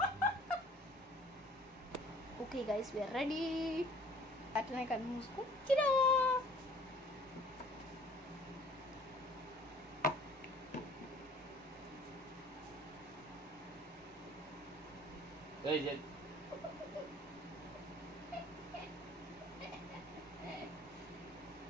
Okay guys, we are ready. అట్లనే కళ్ళు మూసుకో.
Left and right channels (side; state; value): both; normal; correlation 0.52